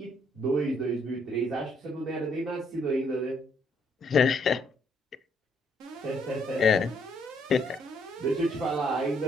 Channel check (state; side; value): normal; both; correlation 0.70